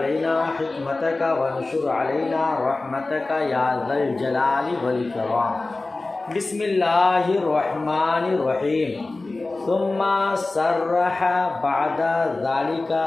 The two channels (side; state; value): right; quieter; 3.2 dB